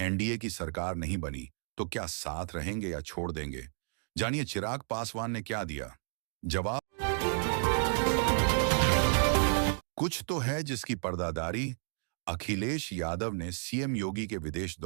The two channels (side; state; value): left; silent; 56 dB below the other